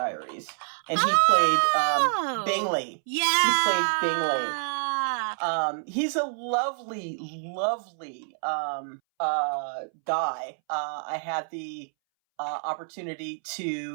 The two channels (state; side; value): silent; left; 60 dB below the other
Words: and he played Bingley. Yeah, he played Bingley. He's a lovely, lovely guy. I had the opportunity